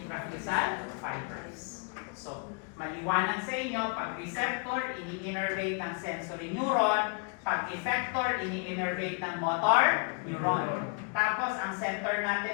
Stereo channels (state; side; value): quieter; right; 35.3 dB